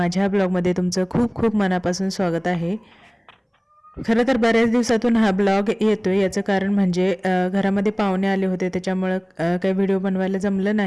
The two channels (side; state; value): both; identical; correlation 1.00